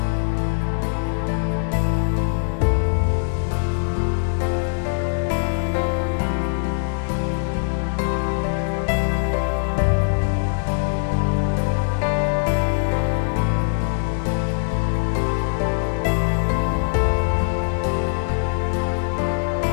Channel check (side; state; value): right; silent; digital silence